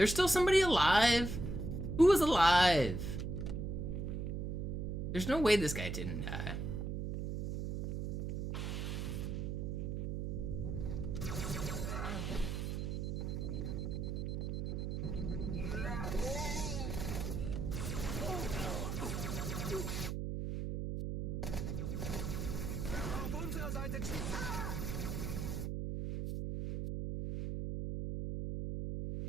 still somebody alive? Who was alive? There's no way this guy didn't die.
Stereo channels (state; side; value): noise; right; hum, 2 dB below the sound